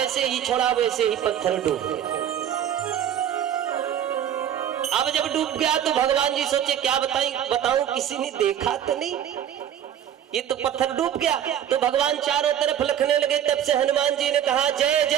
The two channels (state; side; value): quieter; left; 10.1 dB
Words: ही छोड़ा वैसे ही पत्थर डूब गया। अब जब डूब गया तो भगवान जी सोचे क्या बताऊं, किसी ने देखा तो नहीं, ये तो पत्थर डूब गया। तो भगवान चारों तरफ लिखने लगे। तब से हनुमान जी ने कहा, जय